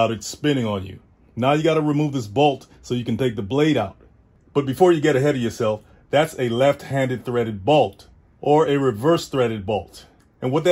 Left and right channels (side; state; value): both; identical; correlation 1.00